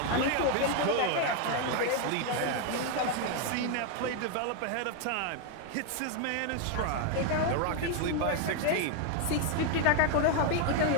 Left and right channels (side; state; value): both; different; correlation 0.01